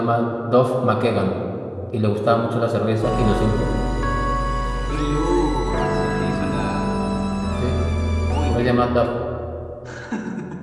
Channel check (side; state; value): both; identical; correlation 1.00